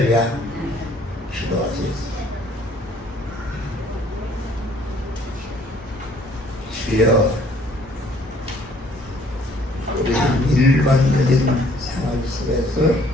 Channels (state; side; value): normal; both; correlation 0.60